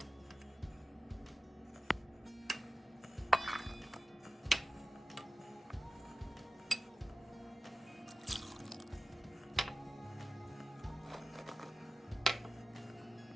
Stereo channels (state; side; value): normal; both; correlation 0.94